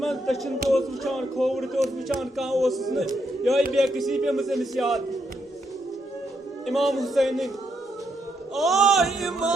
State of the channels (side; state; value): both; normal; correlation 0.78